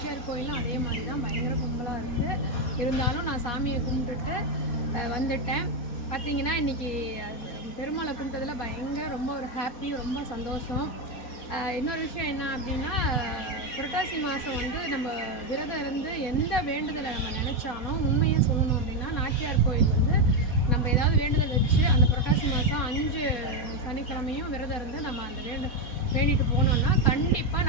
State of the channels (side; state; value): right; late; 4.2 ms